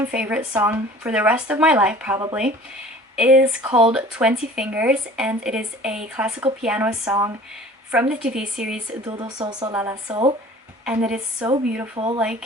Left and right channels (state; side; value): normal; both; correlation 0.46